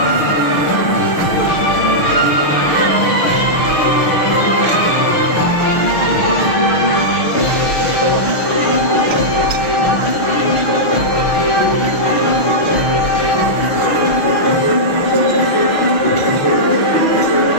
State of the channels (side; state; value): right; late; 6.5 ms